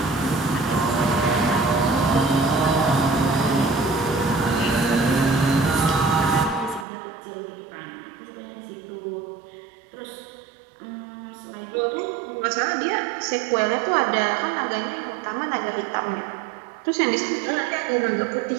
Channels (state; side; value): drops out; left; at 6.9 s